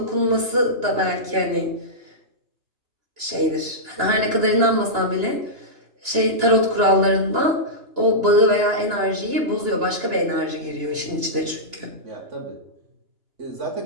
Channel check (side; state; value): left; late; 2.9 ms